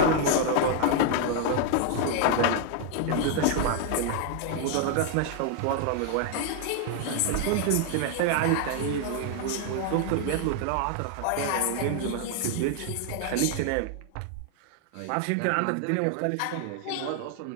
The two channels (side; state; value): both; different; correlation 0.00